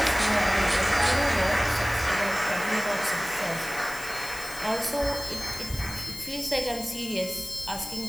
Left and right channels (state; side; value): noise; left; hiss, 12 dB below the sound